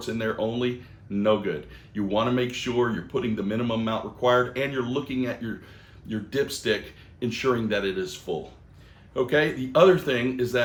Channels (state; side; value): identical; both; correlation 1.00